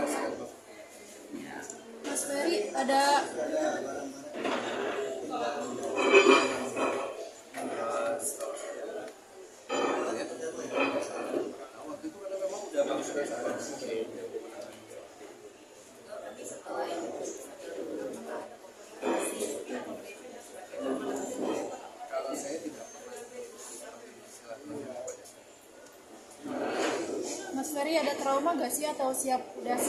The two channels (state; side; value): identical; both; correlation 1.00